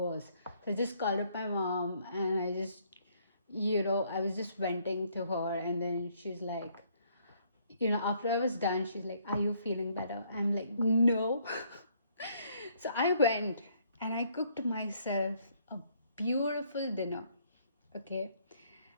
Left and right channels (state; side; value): inverted; both; correlation -0.67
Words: So I just called up my mom, and I just, I was just venting to her, and then she's like, after I was done, she's like, are you feeling better? I'm like, no. So I went and I cooked myself a beautiful dinner. Okay.